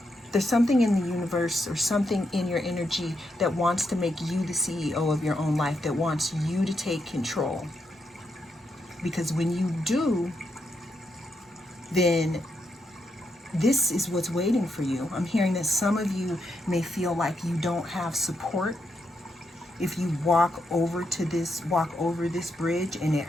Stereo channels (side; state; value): both; normal; correlation 0.82